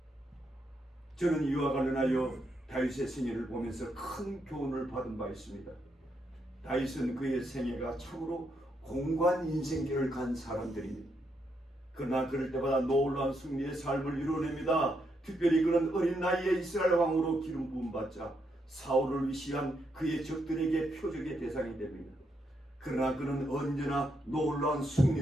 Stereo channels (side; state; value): both; normal; correlation 0.79